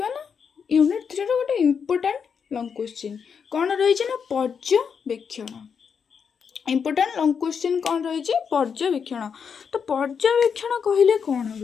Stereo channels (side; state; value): right; quieter; 6.6 dB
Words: ना यूनिट 3 रो गोटे इंपोर्टेंट लॉन्ग क्वेश्चन कौन रही ना पर्यवेक्षण इंपोर्टेंट लॉन्ग क्वेश्चन कौन रही पर्यवेक्षण। तो पर्यवेक्षण कहले कौन